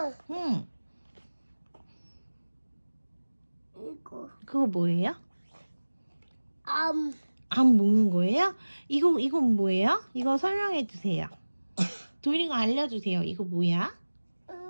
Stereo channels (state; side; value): inverted; both; correlation -1.00